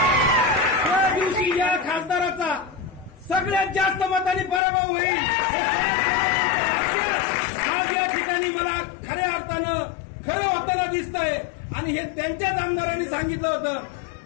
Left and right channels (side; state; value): right; drops out; at 4.6 s